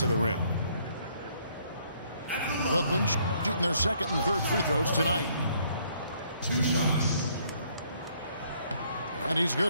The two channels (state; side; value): inverted; both; correlation -0.66